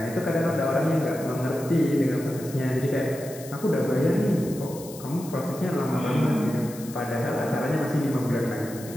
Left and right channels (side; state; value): left; noise; hiss, 16 dB below the sound